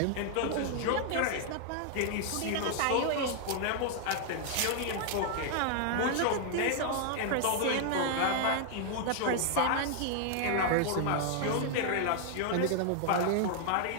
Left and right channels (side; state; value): both; different; correlation 0.00